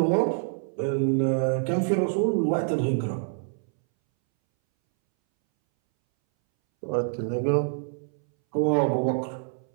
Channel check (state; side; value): silent; left; 61 dB below the other